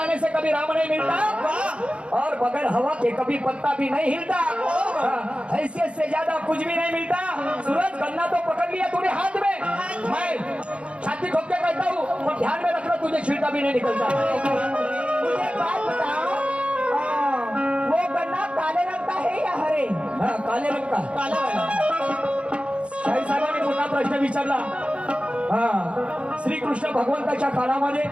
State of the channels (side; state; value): left; late; 0.059 ms